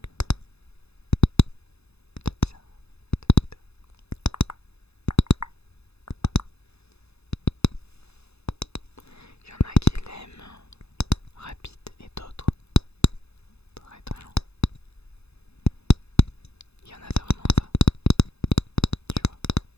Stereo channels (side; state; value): right; late; 0.79 ms